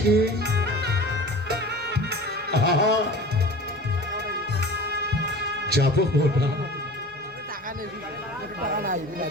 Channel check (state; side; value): normal; both; correlation 0.39